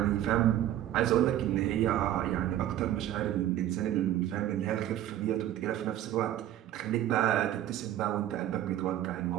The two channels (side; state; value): left; quieter; 12.5 dB